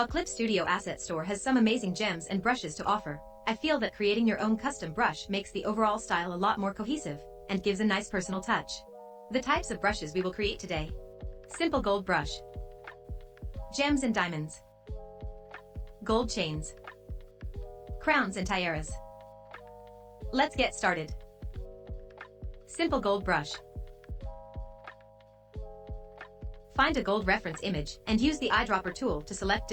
Clip Studio Asset Store has some amazing gems and brushes to offer, I feel that creating your own custom brush makes the overall style a lot more cohesive and gives a nice personal touch. The types of brushes we will create today. Simple gold brush. Gems and diamonds. Gold chains. Crowns and tiaras. Let's get started. Simple gold brush. Find a gold reference image and use the eyedropper tool to select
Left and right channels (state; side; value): identical; both; correlation 1.00